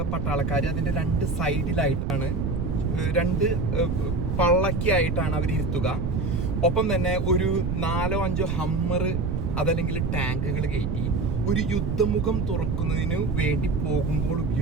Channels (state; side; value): noise; right; rumble, 1 dB below the sound